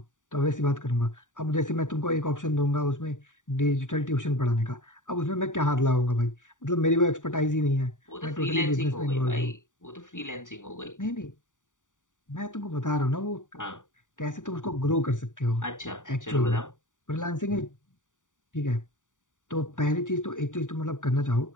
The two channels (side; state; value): right; late; 0.87 ms